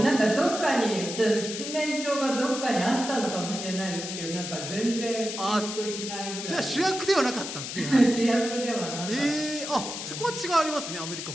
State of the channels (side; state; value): left; noise; hiss, 7 dB below the sound